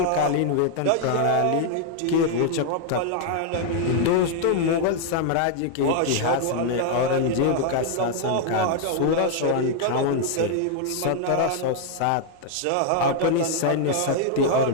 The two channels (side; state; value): both; different; correlation 0.00